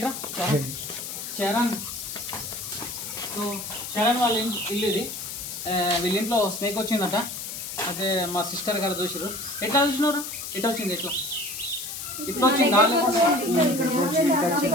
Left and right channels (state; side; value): noise; left; hiss, 7 dB below the sound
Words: చరణ్. సో చరణ్ వాళ్ళ ఇల్లు ఇది. వీళ్ళ ఇంట్లో స్నేక్ వచ్చిందట. అయితే మా సిస్టర్ గారు చూసారు. ఎట్లా చూసినారు? ఎట్లా వచ్చింది? ఎట్లా ఇట్లా వచ్చింది?